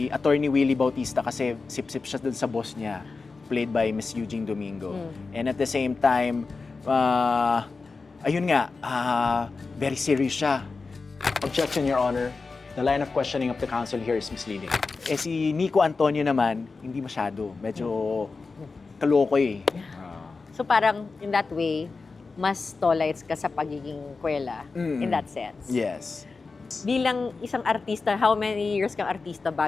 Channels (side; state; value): right; quieter; 4.2 dB